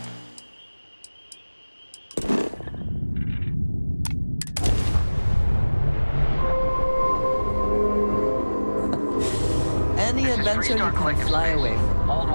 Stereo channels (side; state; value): both; inverted; correlation -1.00